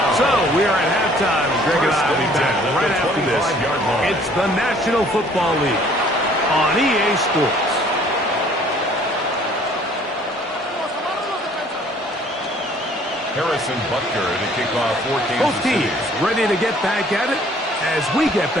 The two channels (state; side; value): normal; both; correlation 0.57